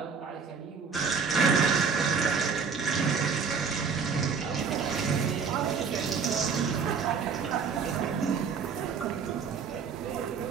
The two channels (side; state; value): left; quieter; 5.8 dB